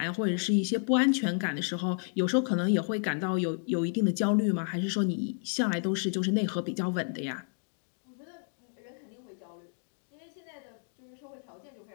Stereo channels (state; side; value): silent; right; 57 dB below the other